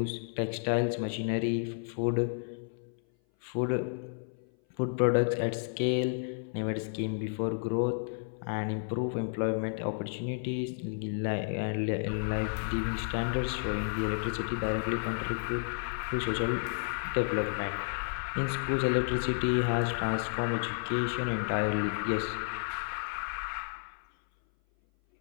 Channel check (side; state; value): right; silent; 57 dB below the other